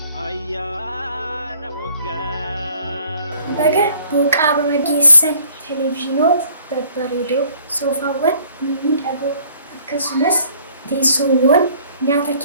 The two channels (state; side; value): inverted; both; correlation -0.58